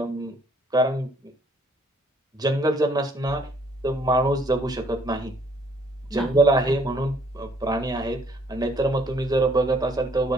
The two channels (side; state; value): both; normal; correlation 0.64